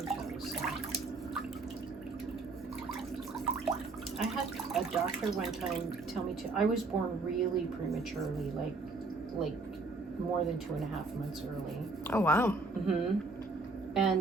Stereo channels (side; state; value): left; quieter; 3.6 dB